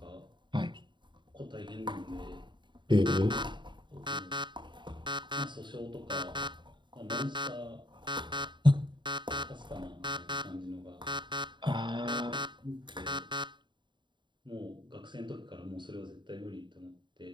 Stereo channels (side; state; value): left; late; 0.23 ms